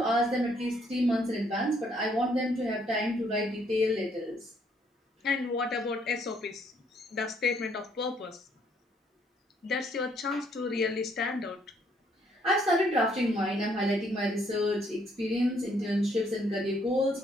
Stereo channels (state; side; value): normal; both; correlation 0.68